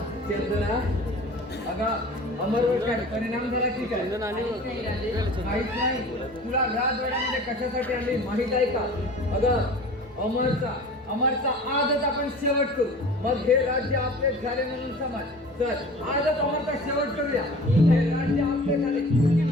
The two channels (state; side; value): normal; both; correlation 0.41